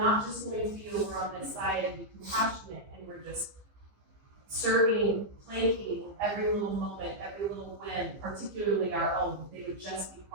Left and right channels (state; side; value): late; left; 15 ms